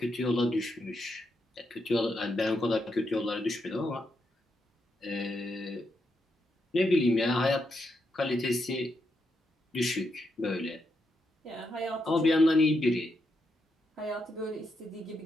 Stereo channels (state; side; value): normal; both; correlation 0.82